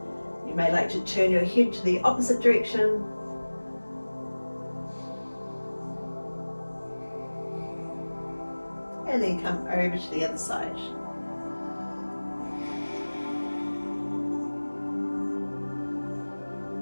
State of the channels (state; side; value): inverted; both; correlation -1.00